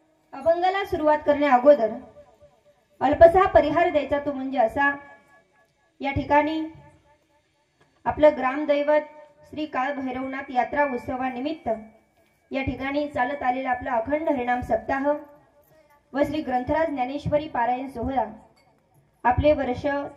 अभंगाला सुरुवात करण्या अगोदर अल्पसा परिहार द्यायचा, तो म्हणजे असा. या ठिकाणी आपलं ग्रामदैवत श्री काळ भैरवनाथ यात्रा उत्सवानिमित्त या ठिकाणी चालत आलेला आपला अखंड हरिनाम सप्ताह व श्री ग्रंथराज ज्ञानेश्वरी पारायण सोहळा आपले वर्ष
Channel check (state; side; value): identical; both; correlation 1.00